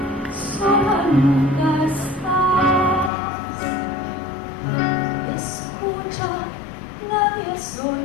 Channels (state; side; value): drops out; right; at 3.1 s